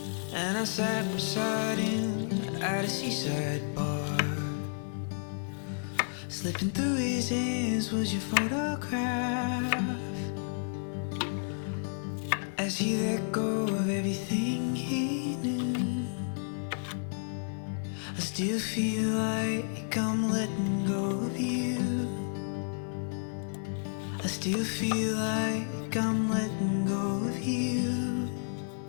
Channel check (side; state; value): right; silent; digital silence